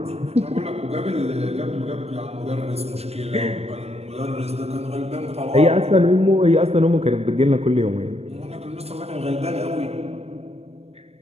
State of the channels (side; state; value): left; late; 0.30 ms